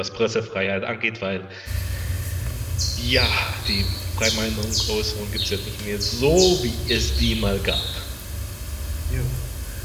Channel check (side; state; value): both; identical; correlation 1.00